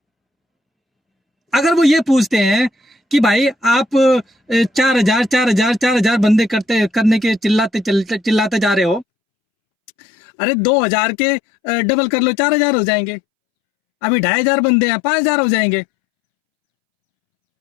अगर वो ये पूछते हैं कि भाई आप 4,000 बंदे करने के चिल्लाते जा रहे हो, अरे 2,000 के डबल कर लो, 4,000 हो जाएंगे। अभी 2,500 बंदे हैं, 5,000 हो जाएंगे।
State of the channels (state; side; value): drops out; right; at 9.1 s